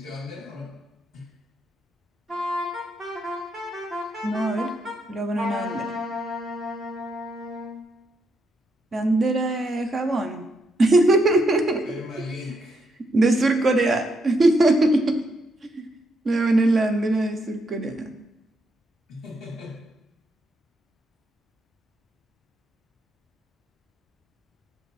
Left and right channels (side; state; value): both; normal; correlation 0.78